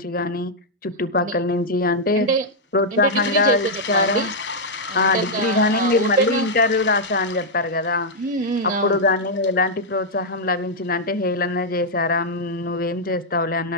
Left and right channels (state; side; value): normal; both; correlation -0.04